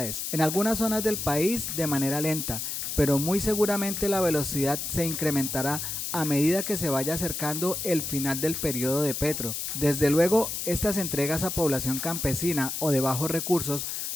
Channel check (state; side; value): noise; left; hiss, 4 dB below the sound